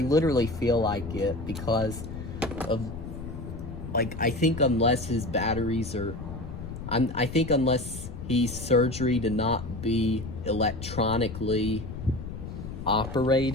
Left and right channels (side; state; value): left; noise; rumble, 9 dB below the sound